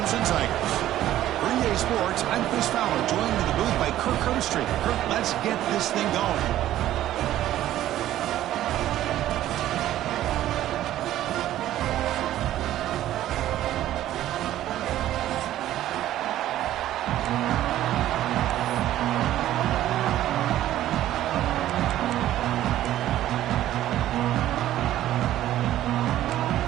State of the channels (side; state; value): left; quieter; 13.3 dB